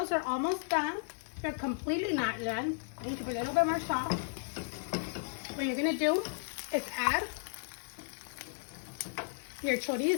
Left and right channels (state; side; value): silent; right; 55 dB below the other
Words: are almost done. They're completely not done. I need to put a little bit more salt. What you're gonna do is add your